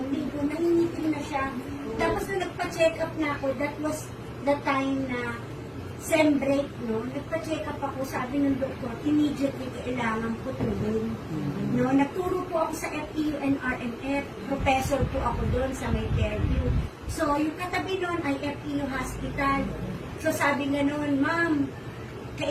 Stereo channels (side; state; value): both; identical; correlation 1.00